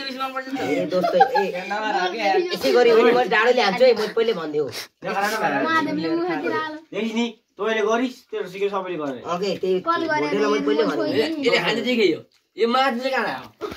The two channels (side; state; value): both; identical; correlation 1.00